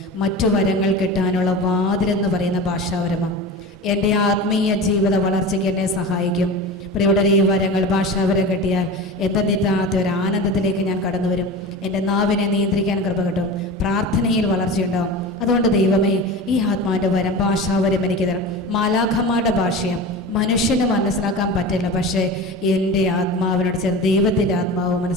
മറ്റു വരങ്ങൾ കിട്ടാനുള്ള വാതിലെന്ന് പറയുന്ന ഭാഷാവരമാണ്. എൻ്റെ ആത്മീയ ജീവിത വളർച്ചയ്ക്ക് എന്നെ സഹായിക്കും. പ്രിയപ്പെട്ടവരെ, ഈ വരങ്ങൾ ഭാഷാവരം കിട്ടിയാൽ എന്തെന്നില്ലാത്ത ഒരു ആനന്ദത്തിലേക്ക് ഞാൻ കടന്നു വരും. എൻ്റെ നാവിനെ നിയന്ത്രിക്കാൻ കൃപ കിട്ടും, പ്രാർത്ഥനയിൽ വളർച്ചയുണ്ടാവും. അതുകൊണ്ട് ദൈവമേ, ഈ ആത്മാവിൻ്റെ വരം ഭാഷാവരം എനിക്ക് തരണം. മാലാഖമാരുടെ ഭാഷയും മനുഷ്യന് മനസ്സിലാക്കാൻ പറ്റില്ല, പക്ഷേ എൻ്റെ ആത്മാവിനോട് ചേർന്ന് ദൈവത്തിൻ്റെ ആത്മാവ്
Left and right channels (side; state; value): both; normal; correlation 0.30